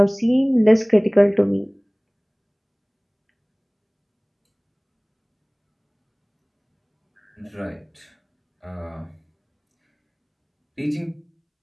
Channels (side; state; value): both; identical; correlation 1.00